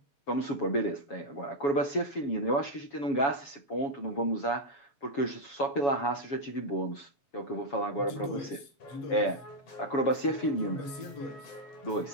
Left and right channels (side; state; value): right; late; 7.2 ms